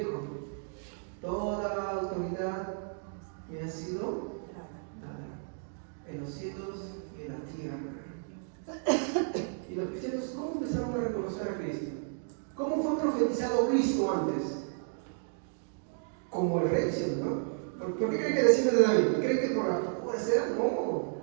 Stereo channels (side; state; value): left; silent; 56 dB below the other